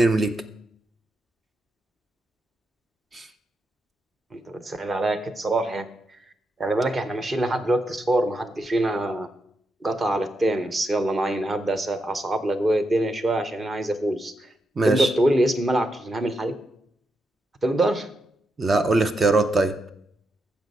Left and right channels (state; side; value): normal; both; correlation 0.84